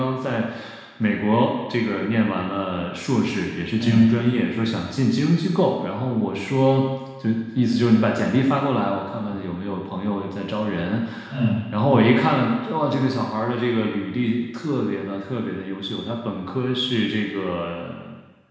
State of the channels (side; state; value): both; identical; correlation 1.00